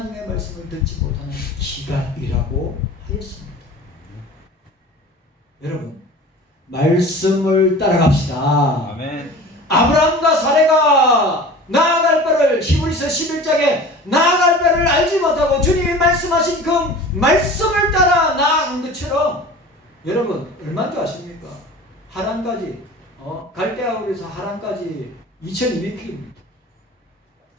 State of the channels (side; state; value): both; normal; correlation 0.39